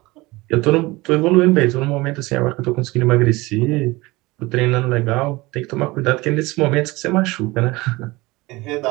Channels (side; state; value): left; quieter; 21.8 dB